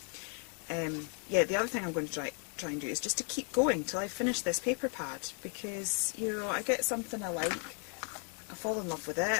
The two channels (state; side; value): quieter; right; 39.3 dB